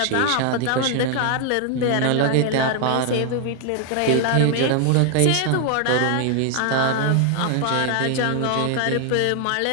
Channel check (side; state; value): both; different; correlation 0.00